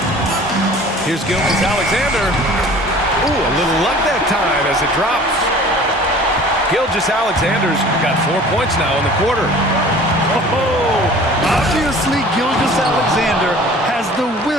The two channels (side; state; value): both; normal; correlation 0.46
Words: Here's Gilgeous-Alexander. Ooh, a little luck that time as it drops. Gilgeous-Alexander's got 4 points now in the quarter. Oh, obviously Gilgeous-Alexander has the